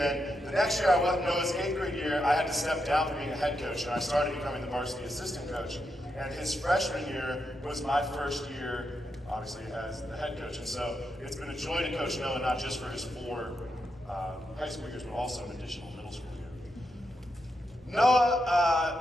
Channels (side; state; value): both; normal; correlation 0.84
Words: the next year, Noah's 8th grade year, I had to step down from being a head coach, and I started becoming the varsity assistant coach. And his freshman year was my first year, obviously, as the head coach. And so it's been a joy to coach Noah, not just for his 4 high school years, but also an additional middle school year.